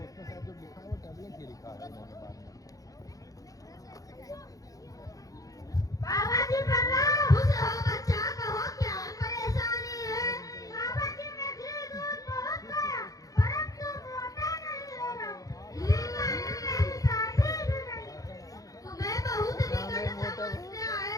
बाबा जी प्रणाम। खुश रहो बच्चा, कहो क्या परेशानी है? बाबा जी मैं घी दूध बहुत खाया, परंतु मोटा नहीं हो रहा। मेरी शादी भी नहीं। तुम्हें बहुत विकट समस्या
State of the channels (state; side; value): late; right; 0.17 ms